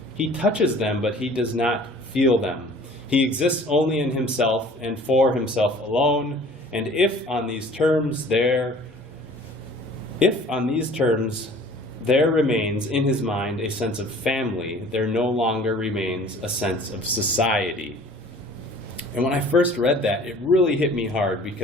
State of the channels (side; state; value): both; normal; correlation 0.49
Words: He touches them, but he does not feel them. He exists only in himself and for himself alone. And if on these terms there remains in his mind a sense of family, there no longer remains a sense of society. And when I first read that, it really hit me hard